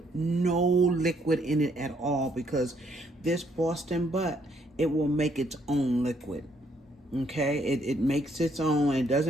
no liquid in it at all, because this Boston butt, it will make its own liquid. Okay, it makes its own. It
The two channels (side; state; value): both; normal; correlation 0.69